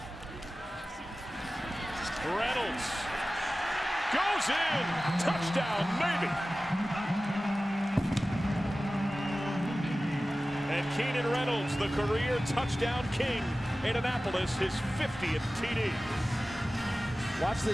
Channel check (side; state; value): both; normal; correlation 0.96